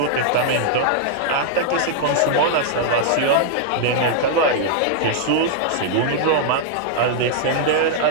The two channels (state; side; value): different; both; correlation -0.01